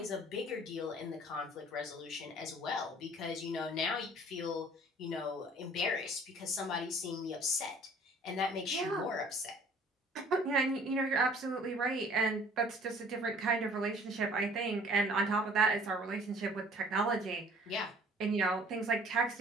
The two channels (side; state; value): both; normal; correlation 0.53